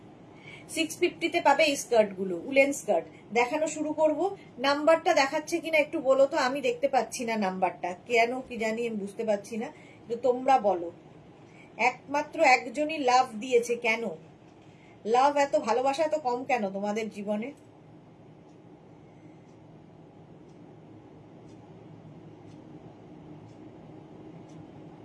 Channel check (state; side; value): identical; both; correlation 1.00